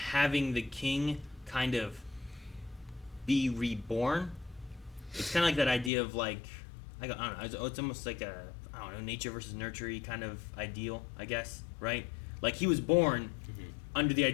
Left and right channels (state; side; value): drops out; right; at 5.9 s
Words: the king kind of be reborn. It's kind of like that idea of like, I don't know. It's almost like a nature versus nurture kind of ideal, I guess, right? Like he was born under the